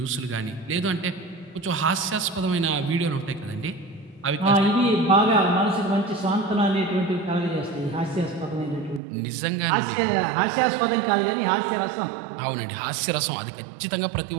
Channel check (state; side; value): drops out; left; at 9.0 s